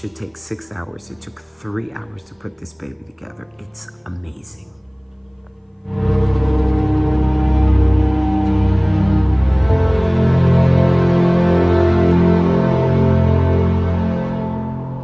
take 6 hours. It took 3 hours to put this baby together. It's amazing.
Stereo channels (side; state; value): both; identical; correlation 1.00